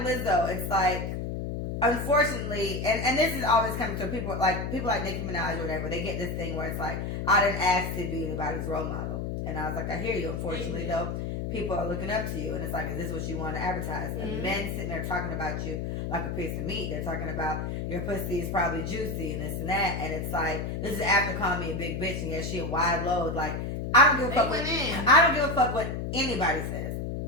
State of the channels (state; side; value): noise; left; hum, 3 dB below the sound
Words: it's like, unfortunately, and this is always coming to people like Nicki Minaj or whatever, they get this thing where it's like, I didn't ask to be anybody's role model. And I was like, I hear you. Unfortunately, though, people are looking up to you. And it's like, is this what you want to advertise? Mm-hmm. And men sitting there talking about you like a piece of meat. They're talking about your pussy is probably juicy and this and that. And it's like, this is after calling me a big bitch and yeah, she a wide load. Like, I don't give a fuck what anybody says.